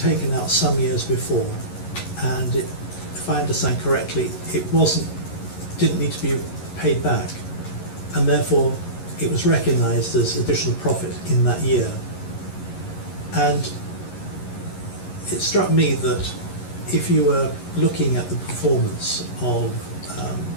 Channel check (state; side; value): late; right; 11 ms